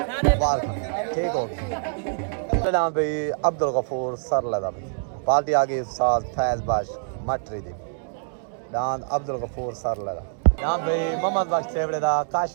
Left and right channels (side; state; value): left; silent; digital silence